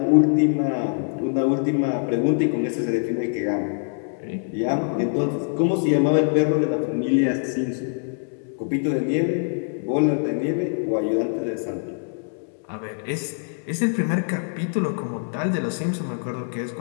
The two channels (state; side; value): silent; right; digital silence